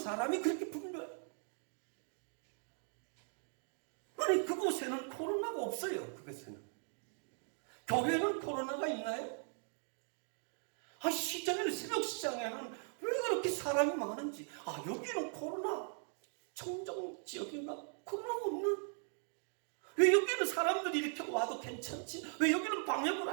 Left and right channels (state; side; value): silent; left; 52 dB below the other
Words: 그렇게 분류해요. 아니, 그곳에는 코로나가 없어요. 그곳에는. 교회는 코로나가 있나요? 시장에는, 새벽시장에는 왜 그렇게 사람이 많은지. 여기는 코로나 청정 지역인가? 코로나가 없나? 왜 여기는 사람들이 이렇게 와도 괜찮지? 왜 여기는 방역을